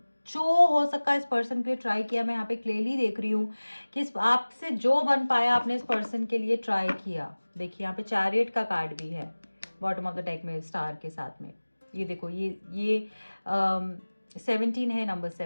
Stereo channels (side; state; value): both; inverted; correlation -1.00